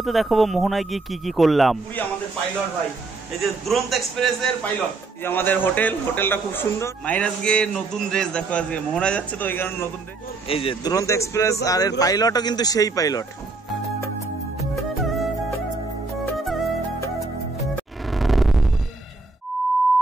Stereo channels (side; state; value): left; quieter; 3.6 dB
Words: দেখাবো মোহনায় গিয়ে কি কি করলাম। আমাদের পাইলট ভাই, এই যে দুরন্ত এক্সপ্রেসের পাইলট, এই আমাদের হোটেলটা খুব সুন্দর। মাইরাজ গিয়ে নতুন ড্রেস দেখো, আজকে মোহনায় যাচ্ছে তো ওই কারণে নতুন ড্রেস। এই যে দুরন্ত এক্সপ্রেস আর এর পাইলটও কিন্তু সেই পাইলট।